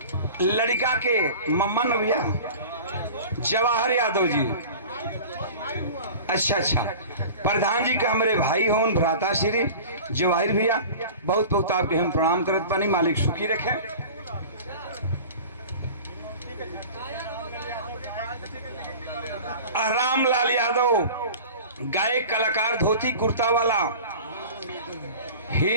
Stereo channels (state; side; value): inverted; both; correlation -0.38